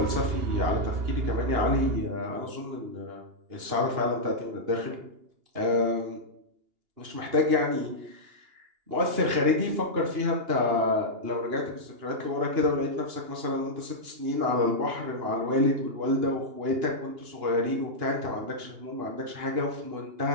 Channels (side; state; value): left; late; 2.8 ms